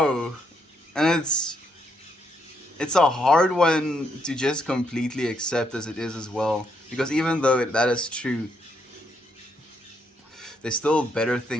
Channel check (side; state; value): both; normal; correlation 0.75